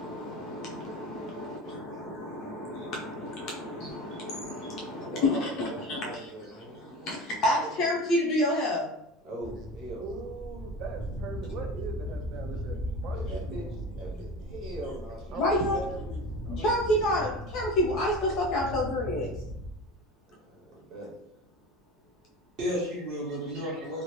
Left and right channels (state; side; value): normal; both; correlation 0.32